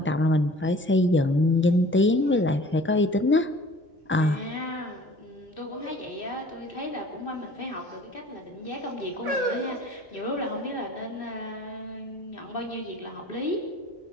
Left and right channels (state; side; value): normal; both; correlation 0.49